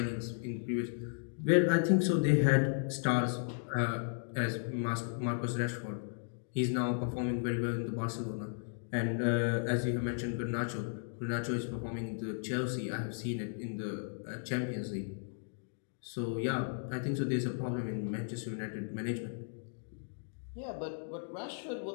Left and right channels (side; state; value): right; silent; digital silence